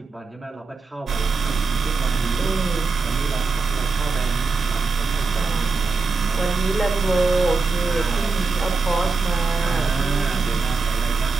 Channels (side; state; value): left; quieter; 4.2 dB